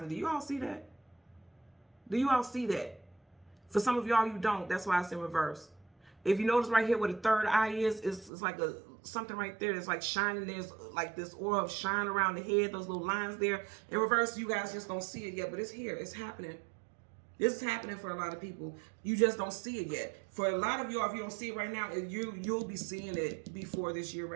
Do you all see that? Do you all see that? For some of y'all, you don't. That's why it's in reverse. If you notice right here where the third eye is, it's like something right there that's like shining. There's like this aura of shine around the head, those little lines there. In reverse, you guys just don't see it yet, but it's here. It's happening. This is happening for a lot of people. You just don't see it yet. For a lot of y'all, if you don't see it right now, you'll be seeing it before this year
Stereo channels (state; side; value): drops out; left; at 8.3 s